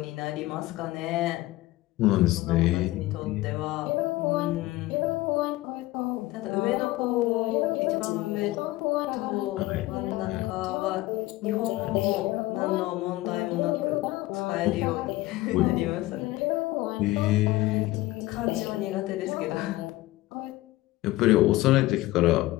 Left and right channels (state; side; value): quieter; right; 18.0 dB